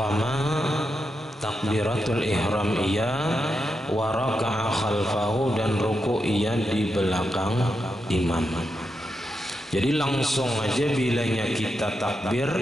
takbiratul ihram ia, wa raka'a khalfahu, dan ruku' ia di belakang imam. Jadi langsung aja bilanya kita takbir,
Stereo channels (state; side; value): normal; both; correlation 0.86